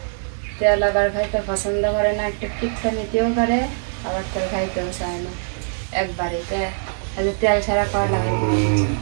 তেল আবার খাইতে পছন্দ করে না একটু টিকটা নিতেও করে আবার তেল খাইতেও চায় না একবারে তেল ছাড়া করলা ভাজি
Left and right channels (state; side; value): silent; left; 64 dB below the other